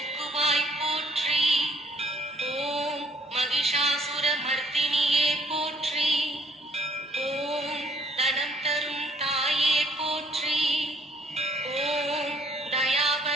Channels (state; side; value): normal; both; correlation 0.64